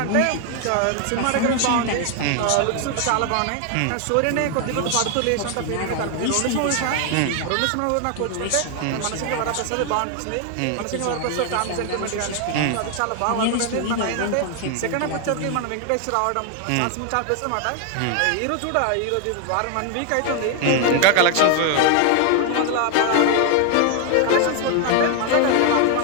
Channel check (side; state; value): both; different; correlation 0.01